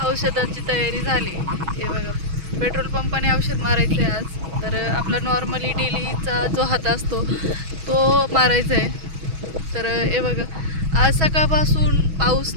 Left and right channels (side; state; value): left; late; 6.2 ms